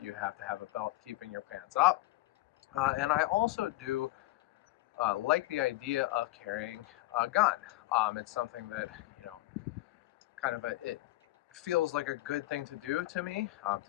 have to have a belt keeping your pants up. And I also do like the idea of carrying a gun. It's something that, it feels like a good thing to do to me,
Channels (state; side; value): quieter; right; 18.3 dB